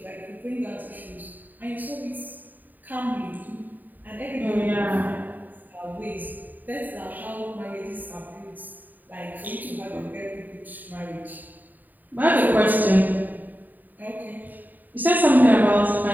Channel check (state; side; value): late; left; 0.087 ms